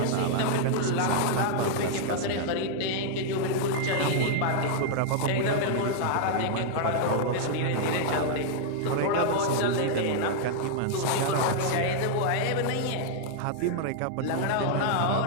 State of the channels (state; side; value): different; both; correlation -0.01